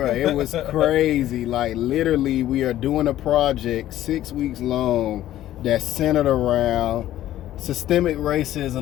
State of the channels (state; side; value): quieter; right; 13.3 dB